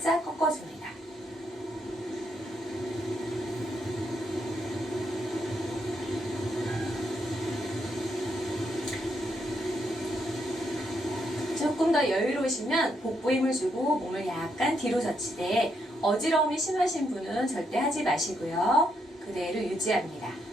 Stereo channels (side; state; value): both; normal; correlation 0.77